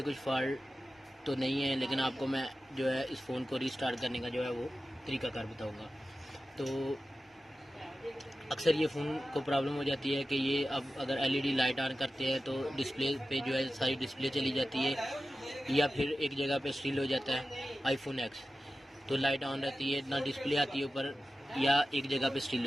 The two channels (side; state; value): both; normal; correlation 0.94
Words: कुछ फॉल्ट तो नहीं है, लेकिन आपको मैं जो है इस फ़ोन को रीस्टार्ट करने का जो है वो तरीकाकार बताऊंगा। तो अक्सर ये फ़ोन को प्रॉब्लम हो जाती है कि ये अब अगर एलईडी लाइट ऑन करते हैं तो डिस्प्ले पे जो है सारी डिस्प्ले चली जाती है, या फिर एक जगह पे स्टिल हो जाता है आईफोन एक्स। तो लाइट ऑन रहती है, ना डिस्प्ले आती है ऊपर, या एक जगह पे स्टिल